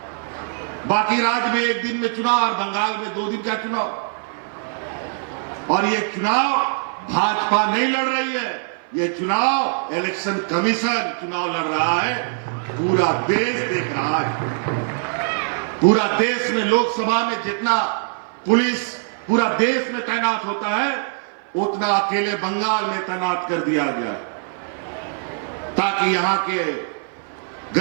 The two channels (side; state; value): left; silent; 57 dB below the other